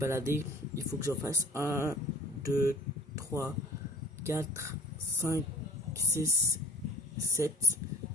Il faut que j'en fasse 1, 2, 3, 4, 5, 6, 7.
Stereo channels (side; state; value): both; normal; correlation 0.52